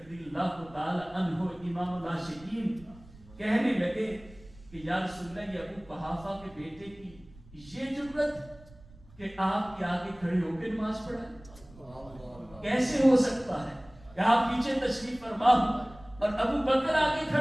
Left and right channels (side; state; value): right; noise; rumble, 22 dB below the sound